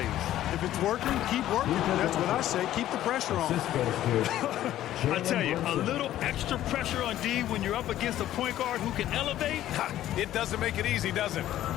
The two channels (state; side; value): quieter; right; 13.0 dB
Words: If it's working, keep working. That's what I say. Keep the pressure on. I tell you, a little extra pressure on D when you're up against a point guard who can elevate. It doesn't make it easy, does it?